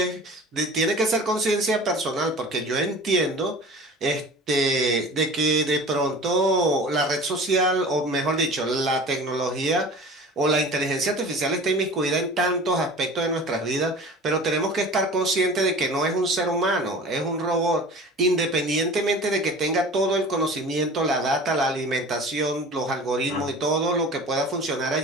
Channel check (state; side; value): normal; both; correlation 0.40